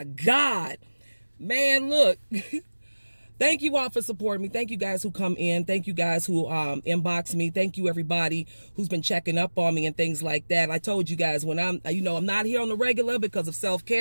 God. Man, look. Thank you all for supporting me. Thank you guys who come in. Thank you guys who inbox me. Thank you everybody who's been checking up on me and things like that. I told you guys when I'm not here on the regular because of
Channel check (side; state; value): both; inverted; correlation -1.00